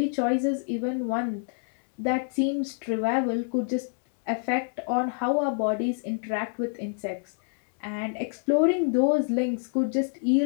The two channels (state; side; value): silent; right; digital silence